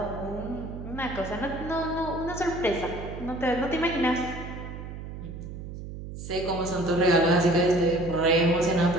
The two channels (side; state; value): right; noise; hum, 10 dB below the sound